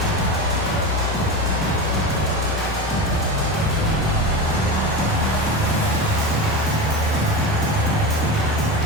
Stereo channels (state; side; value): normal; both; correlation 0.23